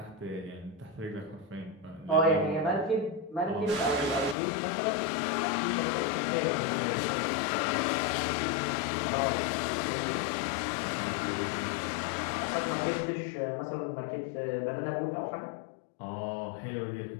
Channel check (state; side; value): drops out; right; at 4.4 s